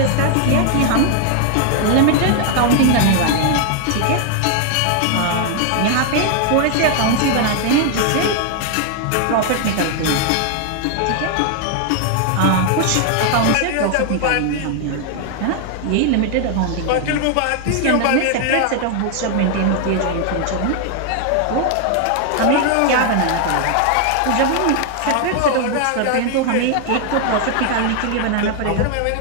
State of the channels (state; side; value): different; both; correlation 0.00